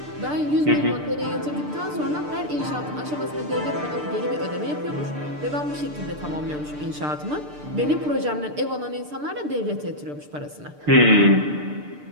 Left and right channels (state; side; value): late; left; 6.7 ms